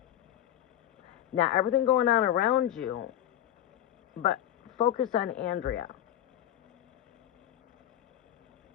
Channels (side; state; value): right; quieter; 11.9 dB